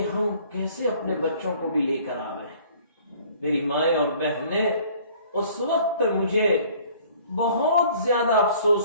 ہم کیسے اپنے بچوں کو بھی لے کر آ گئے۔ میری مائیں اور بہنیں، اس وقت مجھے بہت زیادہ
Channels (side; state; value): both; inverted; correlation -0.54